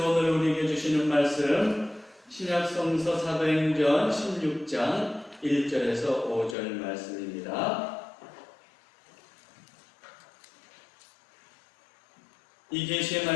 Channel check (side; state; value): right; drops out; at 6.6 s